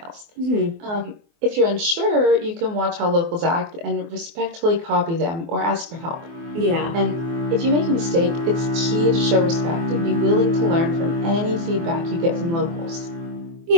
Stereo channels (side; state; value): left; late; 24 ms